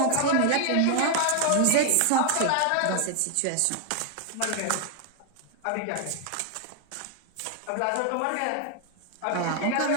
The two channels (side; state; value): both; different; correlation 0.00